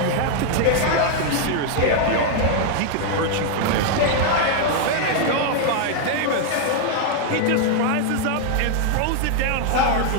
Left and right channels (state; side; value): different; both; correlation 0.00